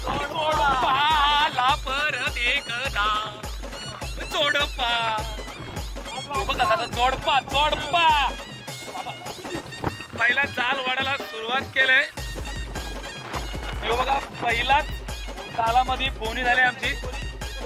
परत एकदा जोडपा. बघा जोडपा जोडपा. पहिला जाल वाढायला सुरुवात केलंय. बघा पहिलाच जालामध्ये बोनी झाली आमची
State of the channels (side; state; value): both; identical; correlation 1.00